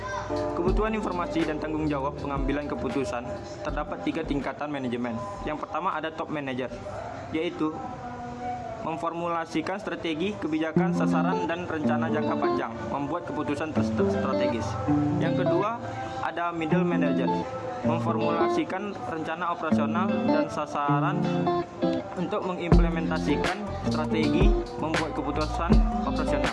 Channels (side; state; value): both; identical; correlation 1.00